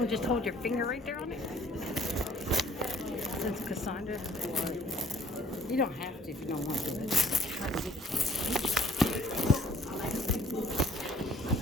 just hold your finger right there on it. Since Cassandra, you don't have to if you don't want to. Try to get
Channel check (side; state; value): both; normal; correlation 0.58